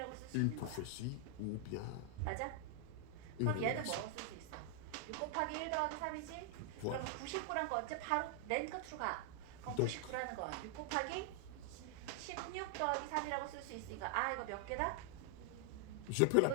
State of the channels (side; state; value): both; different; correlation 0.00